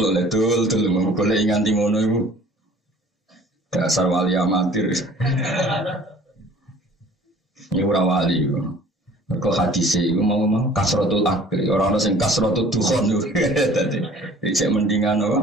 le dul golek nganti ngono iku. Dasar wali amatir. Ini ora wali iku. Kau hadis itu mau kasrotul akli orang sing kasrotul dukhon itu tadi saya mendingan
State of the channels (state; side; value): normal; both; correlation 0.50